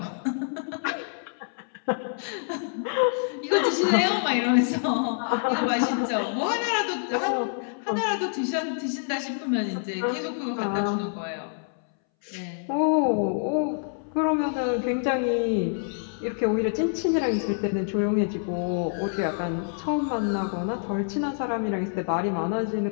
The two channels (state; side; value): silent; right; 60 dB below the other